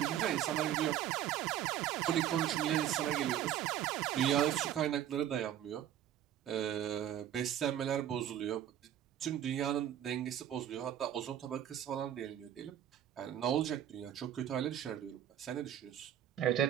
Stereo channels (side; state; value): left; quieter; 10.9 dB